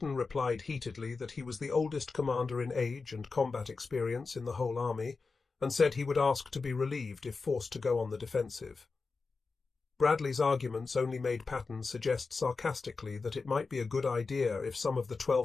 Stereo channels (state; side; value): quieter; right; 4.3 dB